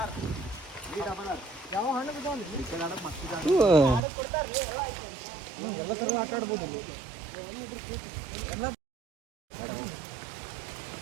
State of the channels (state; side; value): drops out; left; at 4.0 s